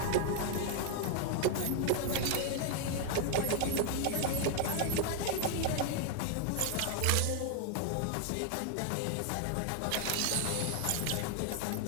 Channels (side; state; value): both; different; correlation 0.00